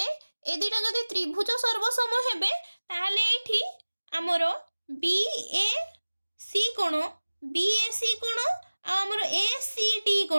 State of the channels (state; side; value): inverted; both; correlation -1.00